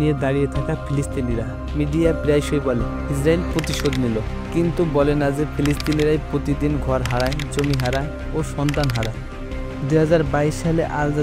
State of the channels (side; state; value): both; identical; correlation 1.00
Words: নিয়ে দাঁড়িয়ে থাকা ফিলিস্তিনিরা। মিডিয়া প্রায়শই বলে ইসরায়েল প্রতিশোধ নিল, কিন্তু বলে না যে ফিলিস্তিনিরাই প্রতিদিন ঘর হারায়, জমি হারায় ও সন্তান হারায়। 2022 সালে আল